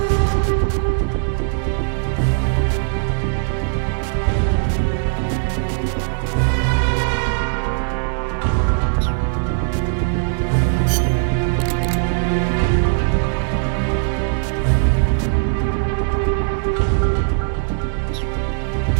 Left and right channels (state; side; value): silent; left; digital silence